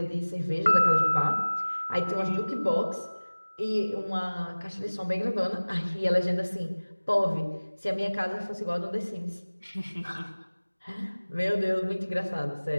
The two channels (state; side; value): inverted; both; correlation -1.00